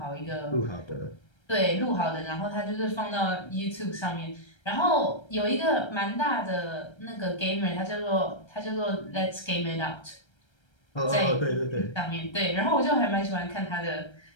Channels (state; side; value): late; right; 1.3 ms